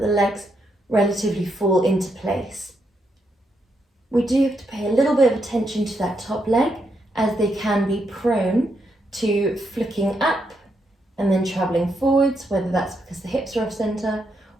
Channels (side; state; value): both; normal; correlation 0.80